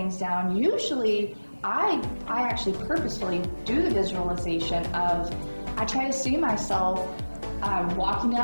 down, usually I actually purposefully do the visualization of, I try to see myself walking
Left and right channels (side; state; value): both; inverted; correlation -1.00